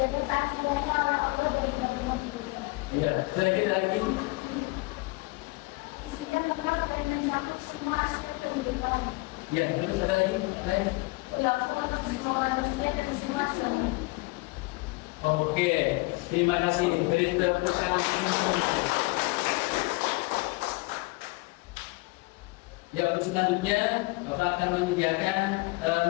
keasliannya oleh Allah dari kitab-kitab. Ya, ada lagi. Isinya lengkap dan mencakup semua aspek kehidupan. Ya, terus ada lagi. Berlaku untuk semua manusia dan semua zaman. Oke, terima kasih. Beri tepuk tangan. Ya, untuk selanjutnya Bapak akan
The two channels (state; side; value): quieter; right; 25.0 dB